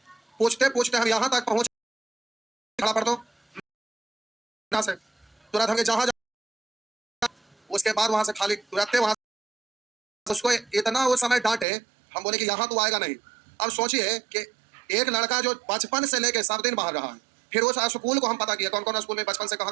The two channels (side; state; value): left; drops out; at 11.7 s